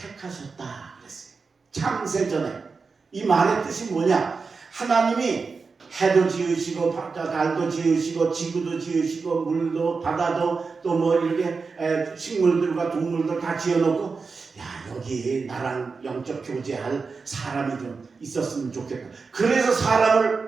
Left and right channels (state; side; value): quieter; left; 4.7 dB